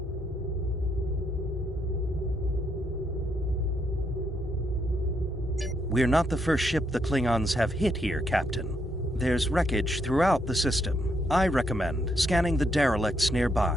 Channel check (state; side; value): normal; both; correlation 0.77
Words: We're not the first ship the Klingons have hit here, Captain. There's wreckage throughout the system. I recommend scanning the derelicts